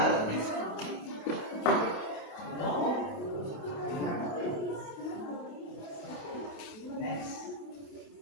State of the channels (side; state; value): right; late; 28 ms